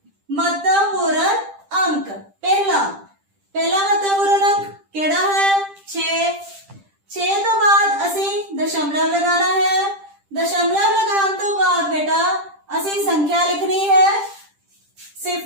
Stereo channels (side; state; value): left; late; 10 ms